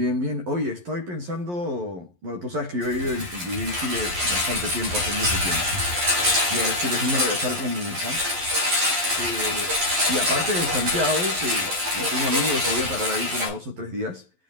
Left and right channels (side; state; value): left; late; 11 ms